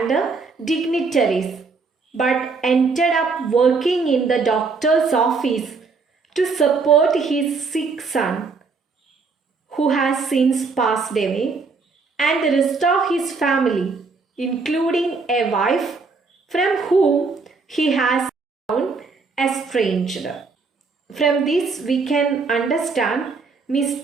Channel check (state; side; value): quieter; left; 4.5 dB